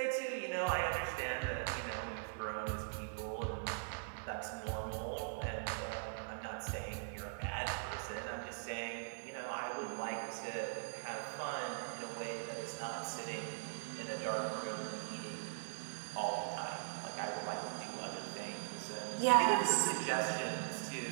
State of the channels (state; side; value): silent; left; digital silence